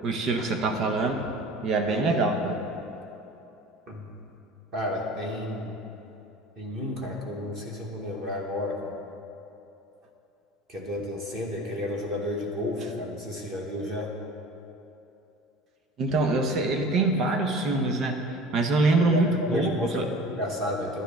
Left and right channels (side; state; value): both; normal; correlation 0.41